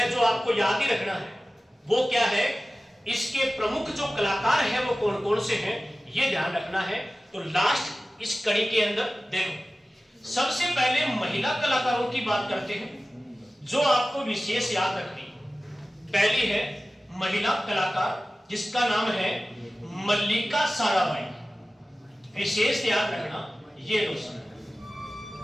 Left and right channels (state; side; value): normal; both; correlation 0.96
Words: जो आपको याद ही रखना है वो क्या है, इसके प्रमुख जो कलाकार हैं वो कौन कौन से हैं, ये ध्यान रखना है। तो लास्ट इस कड़ी के अंदर देखो, सबसे पहले महिला कलाकारों की बात करते हैं जो आपको विशेष याद रखनी। पहली है महिला कलाकार जिसका नाम है मल्लिका साराभाई, विशेष याद रखना ये दोस्तों।